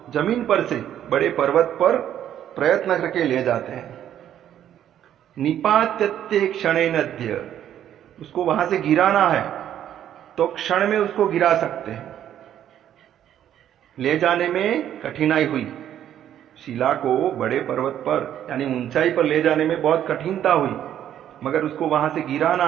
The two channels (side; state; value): left; quieter; 10.7 dB